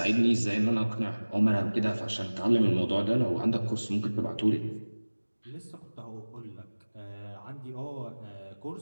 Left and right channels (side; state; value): both; inverted; correlation -1.00